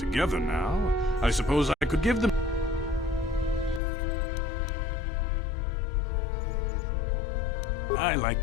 now, I suppose I could give them... I like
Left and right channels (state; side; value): drops out; right; at 3.8 s